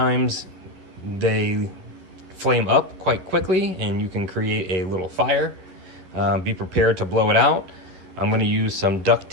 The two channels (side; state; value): left; late; 11 ms